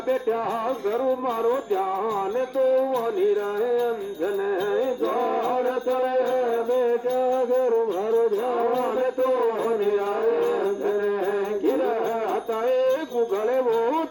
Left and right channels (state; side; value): identical; both; correlation 1.00